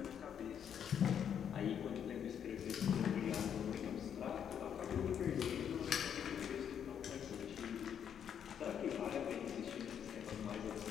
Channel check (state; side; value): quieter; right; 8.5 dB